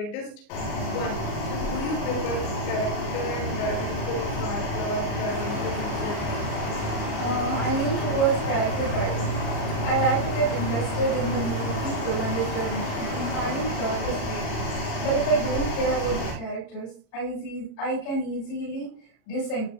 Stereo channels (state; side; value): late; right; 37 ms